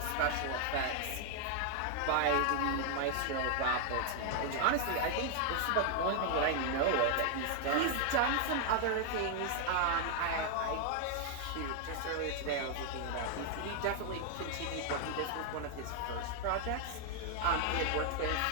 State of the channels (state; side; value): different; both; correlation 0.00